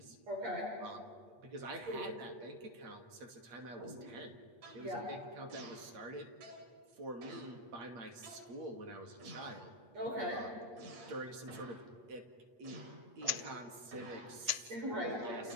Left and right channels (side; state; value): left; late; 8.5 ms